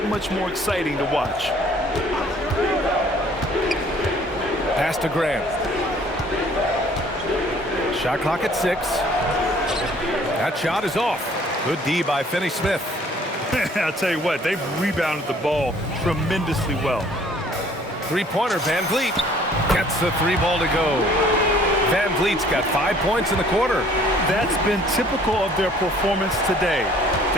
much more exciting to watch. Pass to Grant. Shot clock at 6. That shot is off. Good D by Finney-Smith. I'll tell you what, they've rebounded the ball tremendously well. Three-pointer, Van Vliet gets the 3 ball to go. Van Vliet's got 5 points in the quarter. That's been typical of their performance today.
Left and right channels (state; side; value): normal; both; correlation 0.56